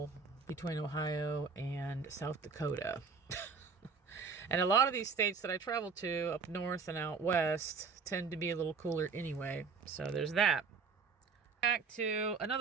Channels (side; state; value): left; quieter; 5.1 dB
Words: between Ohio and South Dakota. And a lot of these states that I travel to up north and out west tend to be a little cooler anyway. So there's that. Back to